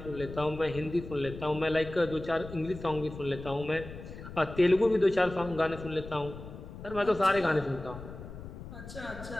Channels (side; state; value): left; noise; rumble, 12 dB below the sound